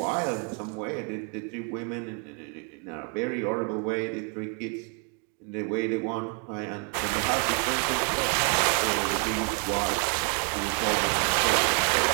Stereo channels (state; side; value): quieter; left; 37.4 dB